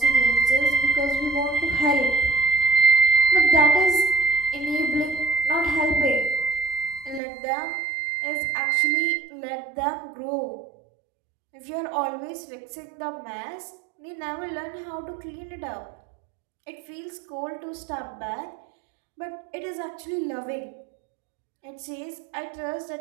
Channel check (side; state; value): left; drops out; at 7.2 s